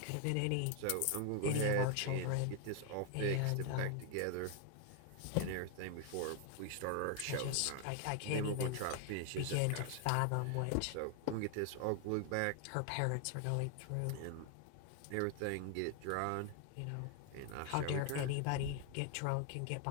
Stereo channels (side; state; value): both; different; correlation 0.00